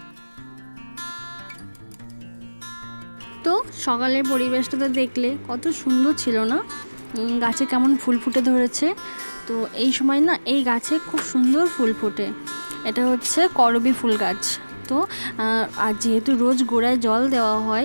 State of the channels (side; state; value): both; inverted; correlation -1.00